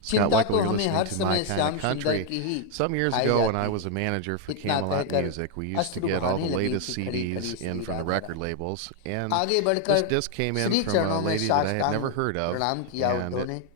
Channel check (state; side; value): different; both; correlation 0.00